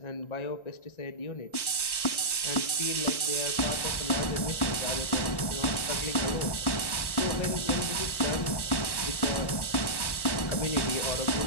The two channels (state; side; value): late; right; 1.1 ms